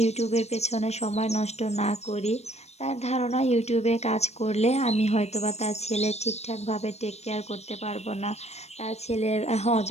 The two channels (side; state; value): right; late; 0.31 ms